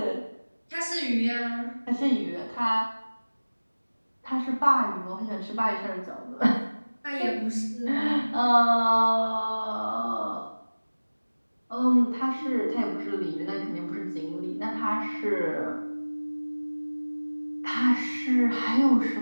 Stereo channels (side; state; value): both; inverted; correlation -1.00